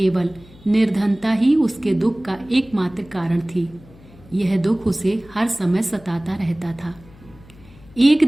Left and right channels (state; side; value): noise; left; hum, 24 dB below the sound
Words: निर्धनता ही उसके दुख का एकमात्र कारण थी। यह दुख उसे हर समय सताता रहता था। एक